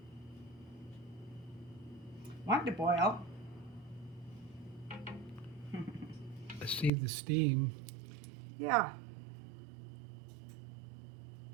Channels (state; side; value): drops out; left; at 6.9 s